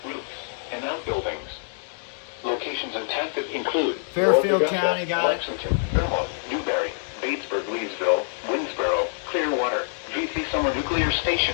roofs, and outbuildings. Locations impacted include Fairfield North Augusta, County, got it. Lexington, Vermont, Newberry, Batesburg, Leesville, Winsboro, Clearwater, G3 Summer Nuclear Station,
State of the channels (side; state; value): right; silent; digital silence